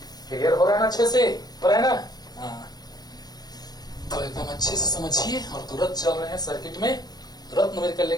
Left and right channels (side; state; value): right; late; 0.19 ms